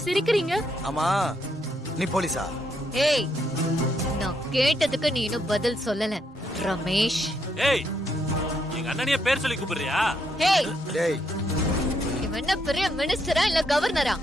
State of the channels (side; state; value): both; normal; correlation 0.76